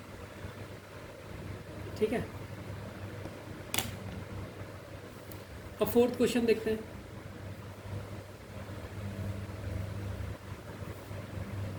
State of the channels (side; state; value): both; identical; correlation 1.00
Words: ठीक है, अब फोर्थ क्वेश्चन देखते हैं।